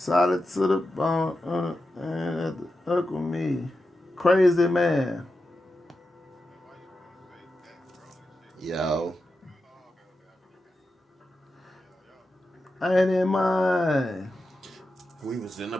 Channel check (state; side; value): normal; both; correlation 0.90